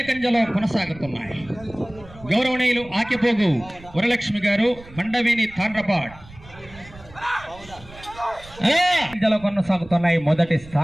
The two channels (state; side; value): noise; right; rumble, 20 dB below the sound